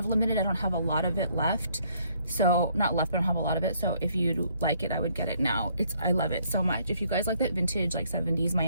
limited. I don't have a lot of it left. So not left, but I don't have a lot of it. So if you like it, I would get it now. I love it so much. If you guys like that vintage, like 70s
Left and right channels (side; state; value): both; inverted; correlation -0.67